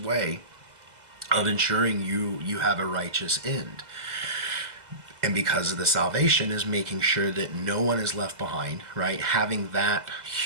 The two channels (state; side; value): late; left; 2.0 ms